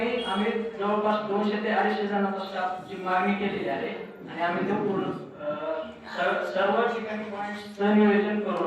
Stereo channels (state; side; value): identical; both; correlation 1.00